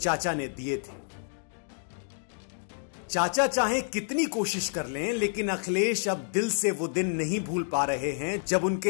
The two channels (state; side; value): silent; right; digital silence